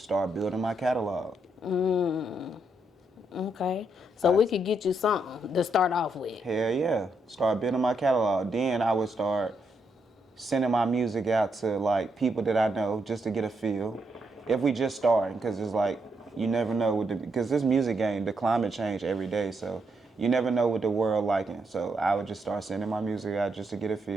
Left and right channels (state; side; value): normal; both; correlation 0.79